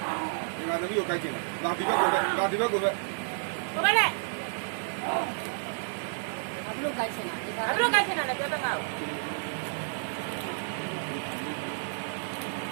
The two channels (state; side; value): silent; left; 57 dB below the other